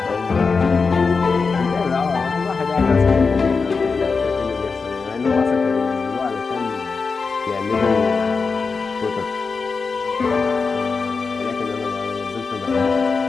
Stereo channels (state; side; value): quieter; right; 4.7 dB